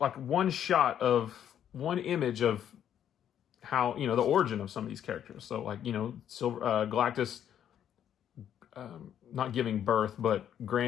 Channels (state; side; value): quieter; right; 9.8 dB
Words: shot of one image of how, you know, the origin of some of these characters. So like, you know, Galactus not giving birth, but